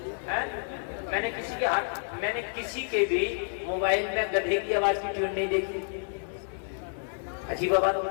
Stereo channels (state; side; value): silent; right; 57 dB below the other